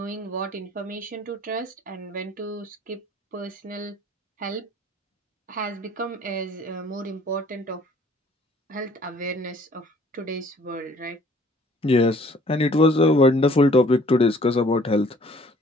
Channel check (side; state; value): both; normal; correlation 0.56